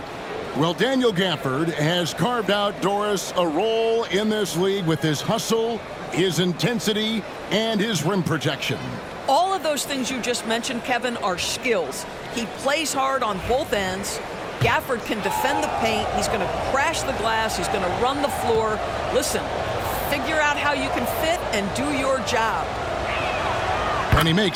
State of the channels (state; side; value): identical; both; correlation 1.00